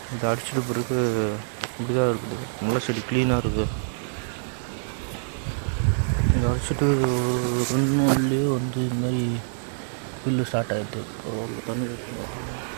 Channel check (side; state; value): left; silent; 61 dB below the other